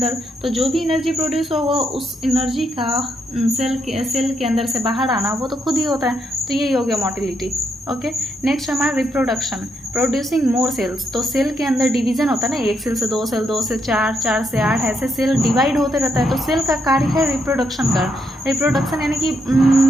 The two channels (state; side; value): normal; both; correlation 0.78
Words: तो जो भी एनर्जी प्रोड्यूस हो वो उस एनर्जी का सेल के अंदर से बाहर आना वो तो खुद ही होता है, तो यही हो गया मोटिलिटी। ओके, नेक्स्ट हमारा रिप्रोडक्शन, प्रोड्यूसिंग मोर सेल्स। तो सेल के अंदर डिवीजन होता है ना, एक सेल से दो सेल, दो से चार, चार से आठ, ऐसे सेल डिवाइड होते रहता है, तो सेल का कार्य है रिप्रोडक्शन का। रिप्रोडक्शन यानी कि